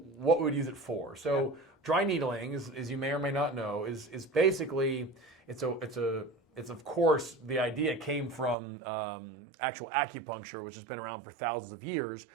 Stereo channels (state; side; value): drops out; left; at 8.6 s